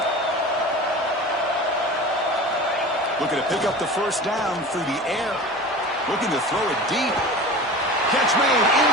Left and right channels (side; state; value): both; normal; correlation 0.35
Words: Looking to pick up the first down through the air. Looking to throw it deep. Catch made in